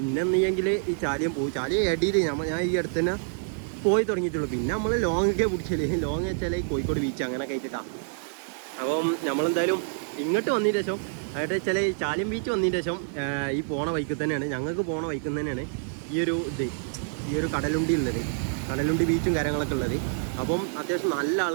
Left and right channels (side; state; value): left; silent; digital silence